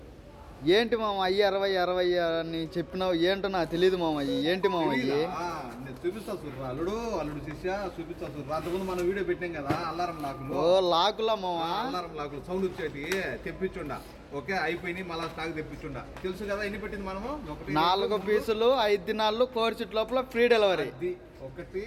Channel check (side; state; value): both; identical; correlation 1.00